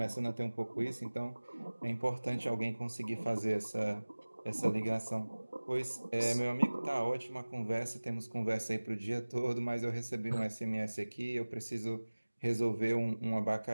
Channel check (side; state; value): both; inverted; correlation -1.00